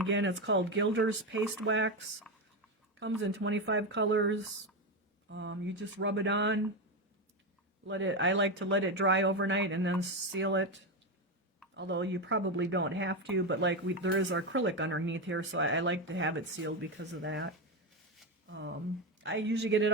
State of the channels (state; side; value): normal; both; correlation 0.12